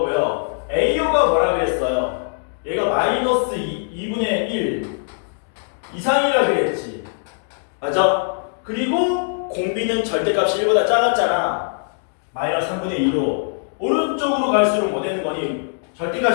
AO가 뭐라 그랬어요? 얘가 마이너스 2분의 1 이상이라 그랬지. 맞아? 그리고 공비는 절대값이 1보다 작았잖아. 마이너스 3분의 2로 오른쪽으로 갈수록 뭐 되는 거니?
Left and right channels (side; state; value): right; silent; digital silence